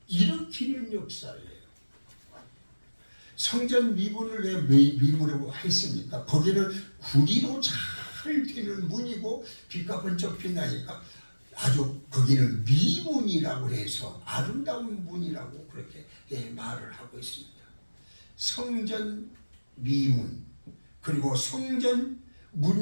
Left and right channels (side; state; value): both; inverted; correlation -1.00